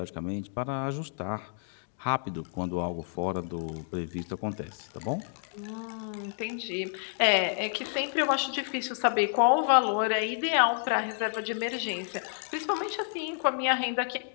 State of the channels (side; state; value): right; silent; 58 dB below the other